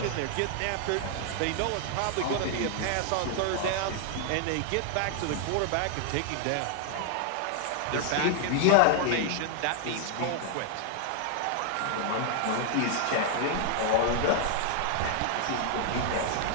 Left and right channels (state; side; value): different; both; correlation 0.00